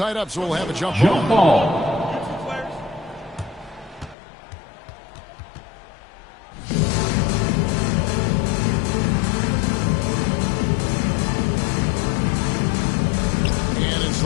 up, so we'll have a jump ball. And it's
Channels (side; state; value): right; drops out; at 4.2 s